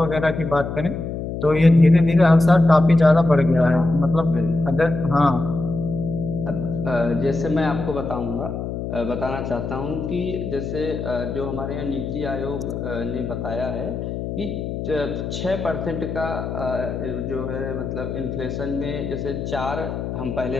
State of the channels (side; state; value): left; noise; hum, 5 dB below the sound